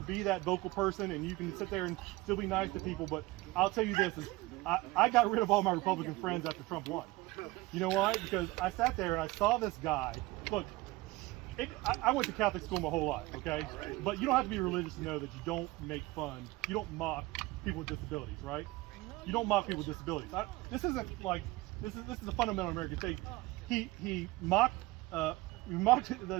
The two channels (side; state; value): left; quieter; 20.6 dB